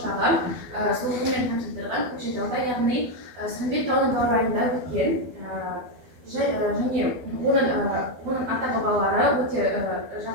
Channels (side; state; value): left; late; 12 ms